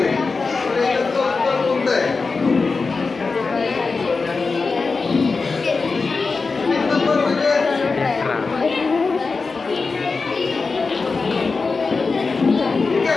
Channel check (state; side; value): quieter; right; 4.3 dB